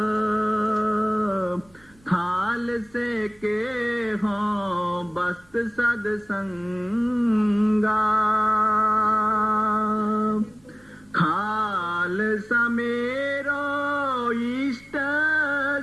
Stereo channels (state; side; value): noise; right; rumble, 30 dB below the sound